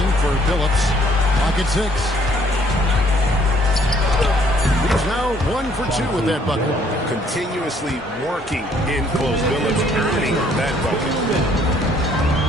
for Phillips. Pocket 6. He's now 1 for 2 with that bucket. Continuously working in close. Billups earning that bucket.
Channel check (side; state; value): both; normal; correlation 0.63